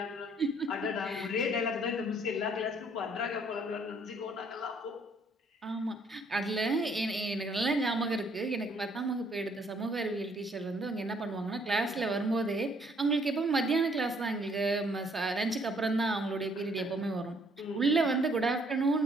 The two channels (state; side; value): normal; both; correlation 0.65